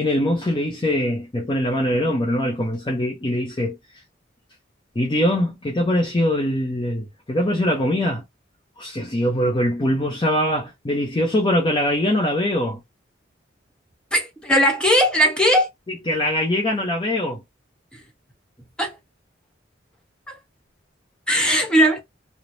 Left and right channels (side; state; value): both; normal; correlation 0.50